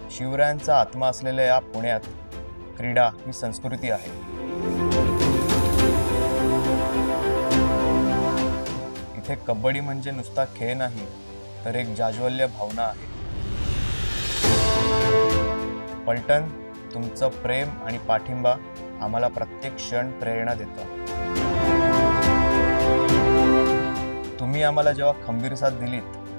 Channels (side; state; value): both; inverted; correlation -1.00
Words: शिवरायांचा आत्मा असलेल्या या पुण्यात क्रीडा ही संस्कृती आहे। इथे कबड्डी म्हणजे नुसता खेळ नाही तर एक जाज्वल्य भावना आहे। पलटण, तुमचं प्रेम आणि पाठिंबा आम्हाला प्रत्येक क्षण प्रेरणा देतो। तुम्ही आम्हाला जेव्हा खंबीर साथ दिलीत